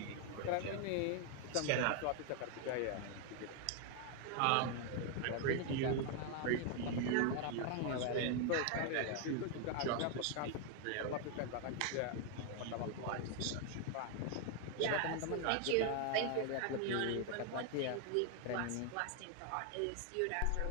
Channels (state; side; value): different; both; correlation 0.00